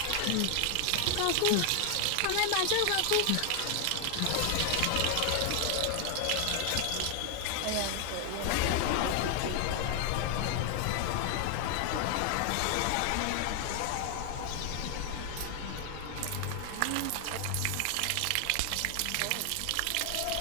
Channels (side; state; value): both; different; correlation 0.00